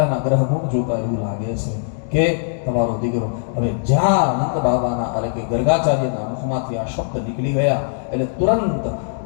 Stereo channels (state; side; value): silent; right; digital silence